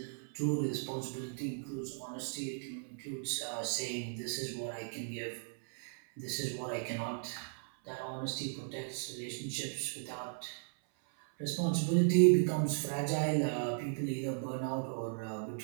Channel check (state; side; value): silent; left; 54 dB below the other